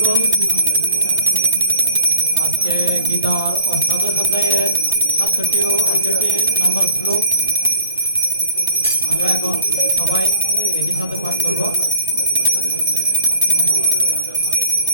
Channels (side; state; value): both; inverted; correlation -0.49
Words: बोल। आज के गीतार अष्टादश अध्यायेर 67 ও 68 নম্বর শ্লোক আমরা এখন সবাই একই সাথে পাঠ করব।